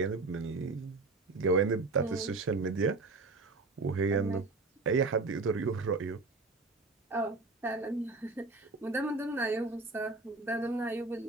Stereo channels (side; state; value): left; quieter; 3.5 dB